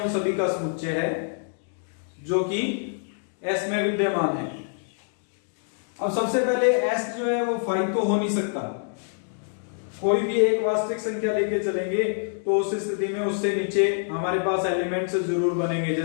सभी का समुच्चय है जो कि S में विद्यमान है। अब सबसे पहले S जो है वो 5 तो हो नहीं सकता, कोई भी एक वास्तविक संख्या लेके चलेंगे तो उस स्थिति में उससे नीचे हमारे पास एलिमेंट्स जरूर बनेंगे।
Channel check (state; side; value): silent; right; digital silence